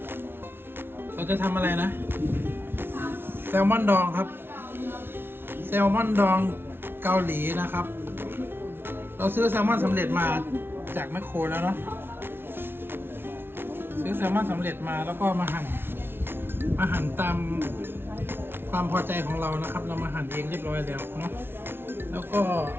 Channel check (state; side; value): late; left; 0.11 ms